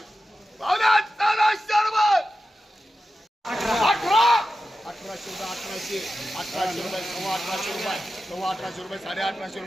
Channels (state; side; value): normal; both; correlation 0.92